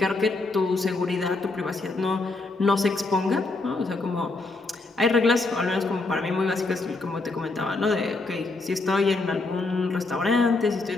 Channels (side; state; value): right; quieter; 3.4 dB